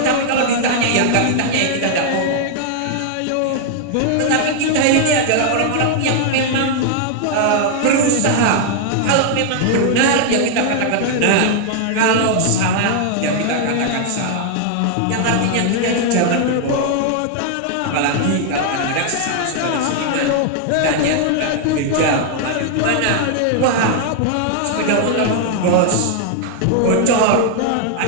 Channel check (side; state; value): both; different; correlation 0.00